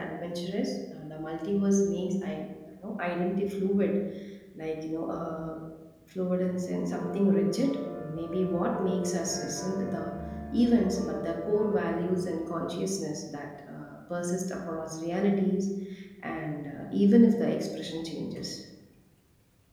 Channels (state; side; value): identical; both; correlation 1.00